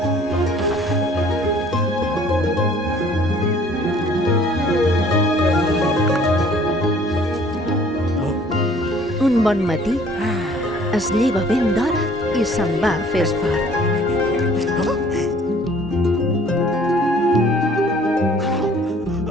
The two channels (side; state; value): both; normal; correlation 0.55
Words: Un bon matí, es lleva ben d'hora i se'n va a fer esport.